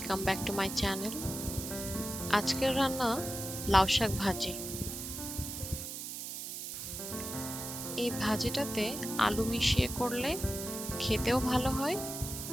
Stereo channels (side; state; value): right; noise; hiss, 7 dB below the sound